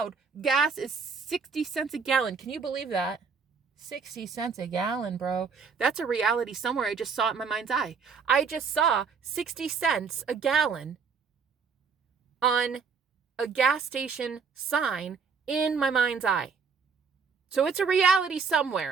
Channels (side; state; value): left; quieter; 5.6 dB